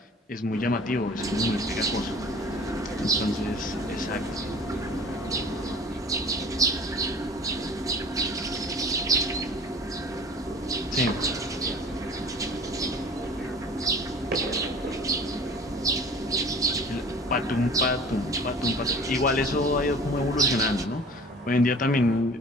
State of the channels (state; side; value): normal; both; correlation 0.44